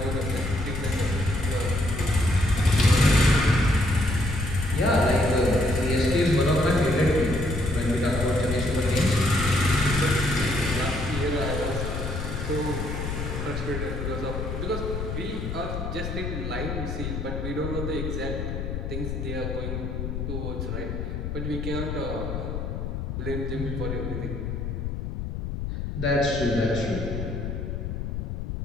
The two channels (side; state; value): left; noise; rumble, 4 dB below the sound